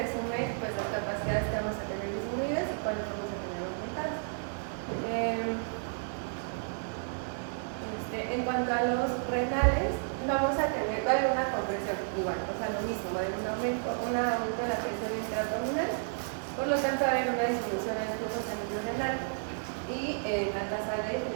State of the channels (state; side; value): silent; left; digital silence